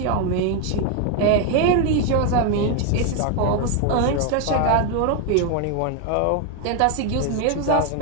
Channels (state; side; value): different; both; correlation 0.01